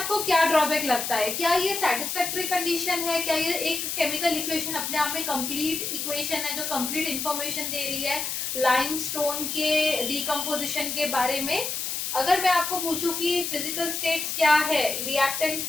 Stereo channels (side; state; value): left; noise; hiss, 3 dB below the sound